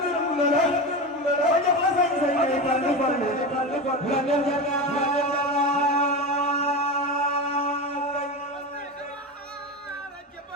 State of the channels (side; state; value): both; normal; correlation 0.22